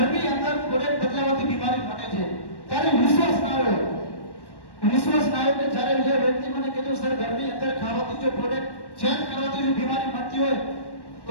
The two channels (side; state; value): right; late; 1.1 ms